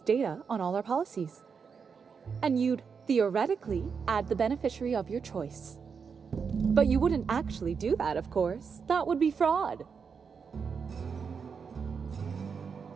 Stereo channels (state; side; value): quieter; left; 6.0 dB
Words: on all our policies. And you'd, theoretically, add the beneficiary of your choice. But you wouldn't actually do that, of course. That would be fraud.